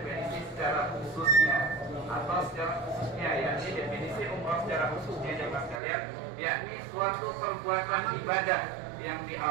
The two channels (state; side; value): drops out; left; at 5.8 s